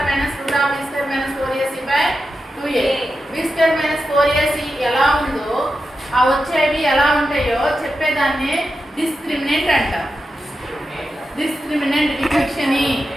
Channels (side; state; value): both; normal; correlation 0.89